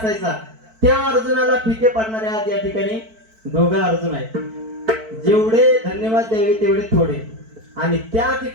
त्या अर्जुनाला फिके पडणारे आज या ठिकाणी दोघं अर्जुन आहेत. जेवढे धन्यवाद द्यावे तेवढे थोडे. आणि त्या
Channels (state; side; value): late; left; 4.5 ms